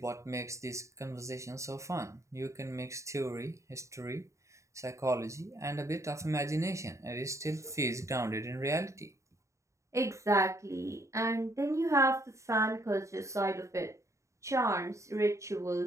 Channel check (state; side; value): late; left; 0.14 ms